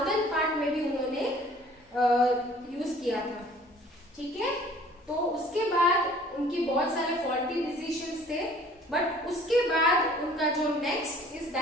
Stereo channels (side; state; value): both; normal; correlation 0.53